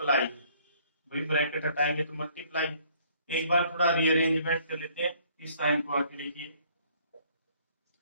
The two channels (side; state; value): both; inverted; correlation -0.61